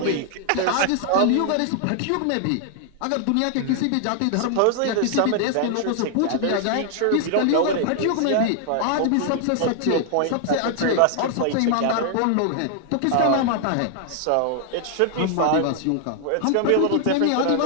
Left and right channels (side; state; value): both; different; correlation 0.00